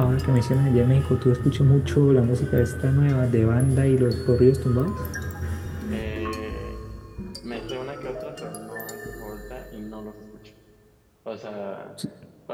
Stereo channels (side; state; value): both; identical; correlation 1.00